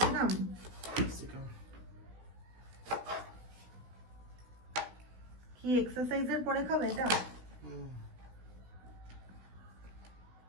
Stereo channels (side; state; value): left; late; 16 ms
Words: কি এক্সারসাইজের পরে খাবে এটা?